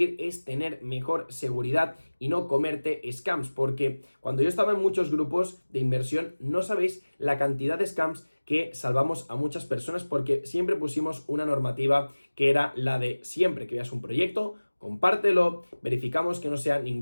es tener mejor seguridad y no comerte scams, porque cuando yo estaba en muchos grupos de inversión, no sabéis la cantidad de scams que salvamos a muchas personas porque siempre pusimos una normativa que era la de siempre que veas un proyecto, compártelo, verificamos que no sea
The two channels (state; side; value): inverted; both; correlation -1.00